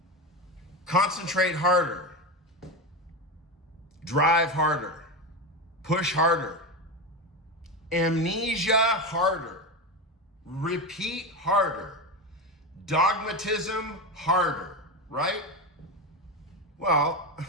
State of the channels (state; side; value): normal; both; correlation 0.18